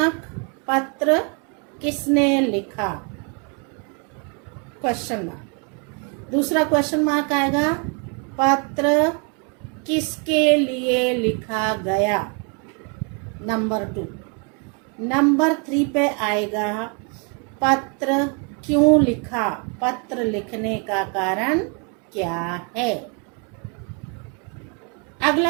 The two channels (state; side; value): quieter; left; 36.4 dB